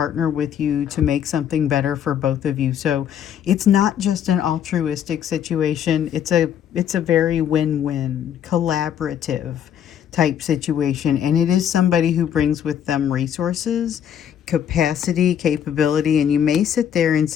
with you to make something better for both of you. So it's not just an altruistic situation. It's a very win-win, collaborative type situation, and it is somebody who brings with them resources, capacity, capability, and you may sit there and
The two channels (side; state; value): right; quieter; 9.3 dB